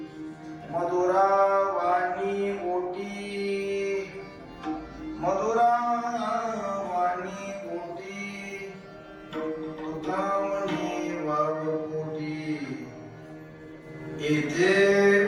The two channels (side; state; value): both; identical; correlation 1.00